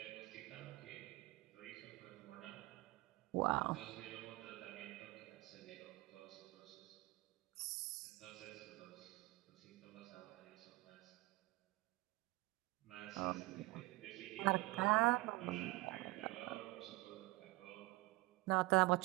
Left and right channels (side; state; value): left; quieter; 21.4 dB